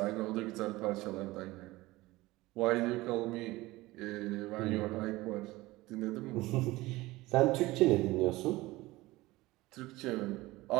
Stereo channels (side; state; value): left; quieter; 19.5 dB